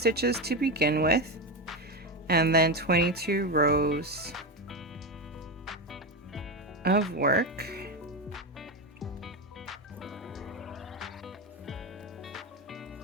to begin with, and then 22 rows of work.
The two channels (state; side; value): normal; both; correlation 0.15